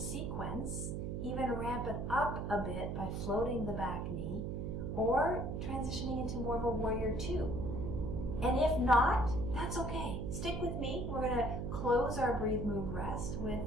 even ramp it up a bit by floating the back knee, or transitioning into more of a warrior two. And if not, that's okay. Stick with me. We're going to close our breathe, move, rest with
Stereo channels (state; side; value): noise; right; hum, 3 dB below the sound